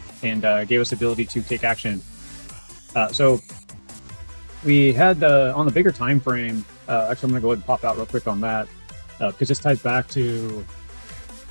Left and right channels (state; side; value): inverted; both; correlation -1.00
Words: and gave us the ability to take action. So we had on the bigger time frame, actually I'm going to go ahead and pop out real quick on that because this ties back to